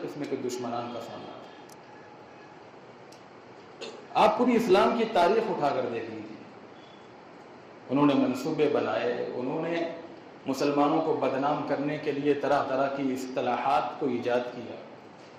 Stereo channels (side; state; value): both; identical; correlation 1.00